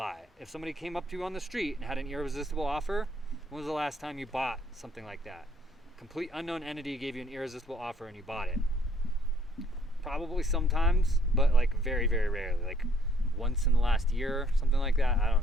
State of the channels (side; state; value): both; normal; correlation 0.63